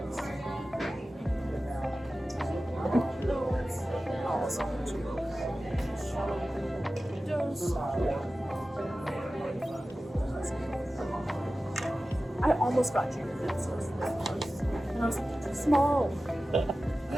scratchy. It's so small. And I was like, it's small.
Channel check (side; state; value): both; normal; correlation 0.95